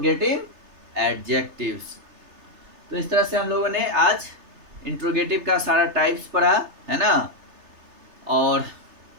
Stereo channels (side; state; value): left; late; 3.3 ms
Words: adjectives. तो इस तरह से हम लोगों ने आज इंट्रोगेटिव का सारा टाइप्स पढ़ा, है ना, और